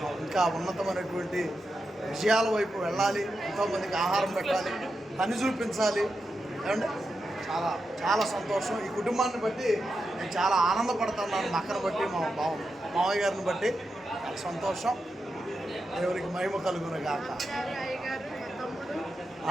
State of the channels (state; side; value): normal; both; correlation 0.88